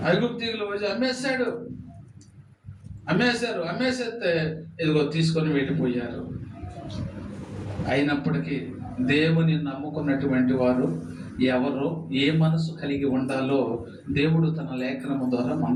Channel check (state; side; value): identical; both; correlation 1.00